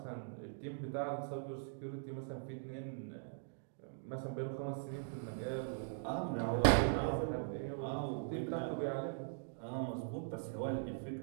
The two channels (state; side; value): silent; left; digital silence